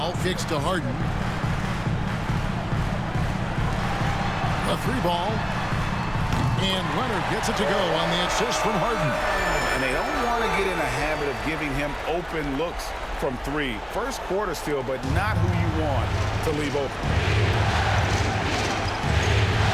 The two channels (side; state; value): both; identical; correlation 1.00